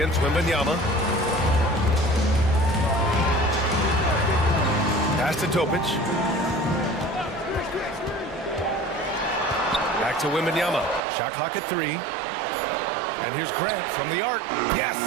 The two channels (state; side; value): drops out; left; at 11.0 s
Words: Wembanyama. Pass to Topic. Back to Wembanyama. Shot clock at 3. And here's Grant from the arc. Yes!